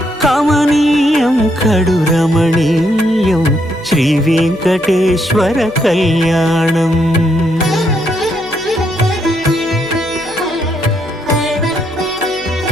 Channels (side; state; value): left; noise; hum, 27 dB below the sound